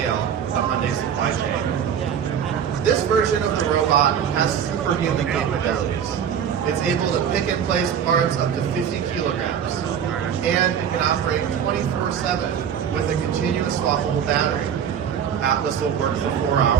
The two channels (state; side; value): quieter; left; 8.4 dB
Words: to Hyundai supply chain. This version of the robot has superhuman capabilities. It's able to pick and place parts up to 50 kilograms, and it can operate 24/7 with a continuous swappable battery. Atlas will work for 4